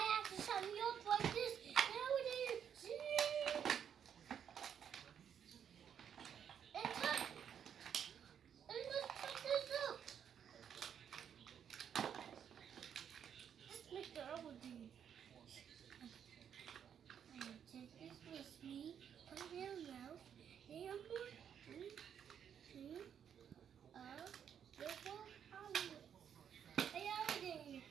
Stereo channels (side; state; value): left; quieter; 8.4 dB